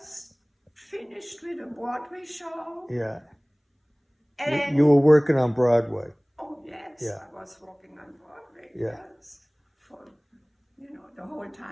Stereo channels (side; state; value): both; identical; correlation 1.00